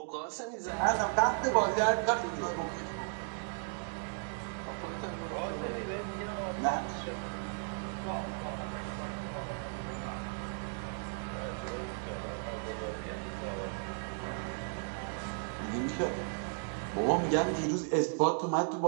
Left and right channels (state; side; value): silent; left; 54 dB below the other